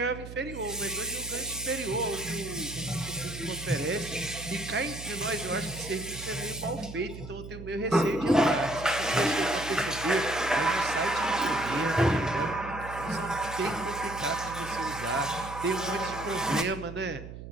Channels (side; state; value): right; noise; hum, 11 dB below the sound